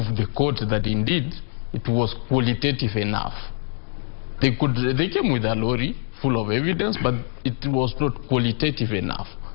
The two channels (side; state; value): right; silent; 63 dB below the other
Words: the court that indeed it was qualitative enough. They came with a lorry full of evidence, but it was not qualitative enough.